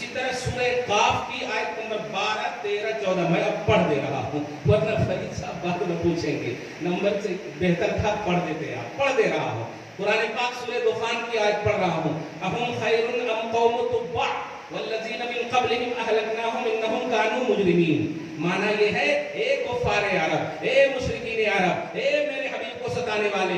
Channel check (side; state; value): both; identical; correlation 1.00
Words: तरह सूरह काफ की आयत नंबर 12, 13, 14 मैं अब पढ़ दे रहा हूँ, वरना फरीद साहब बाद में पूछेंगे, नंबर से बेहतर था पढ़ देते आप। पढ़ दे रहा हूँ कुरान पाक सूरह दुखान की आयत पढ़ रहा हूँ। अहुम खैरुन अम कौम तुब्बा वल्लज़ीना मिन क़ब्लिहिम अहलकनाहुम इन्नहुम कानू मुजरिमीन। माना ये है, ए कुफ़ारे अरब, ए मुशरिकीन अरब, ए मेरे हबीब को सताने वाले,